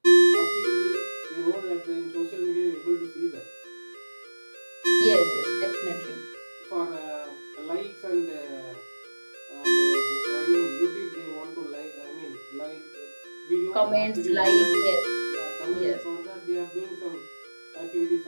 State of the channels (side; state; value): both; inverted; correlation -1.00